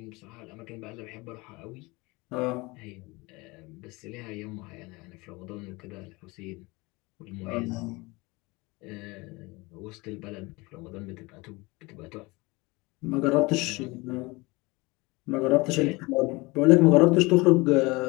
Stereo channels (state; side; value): quieter; right; 24.1 dB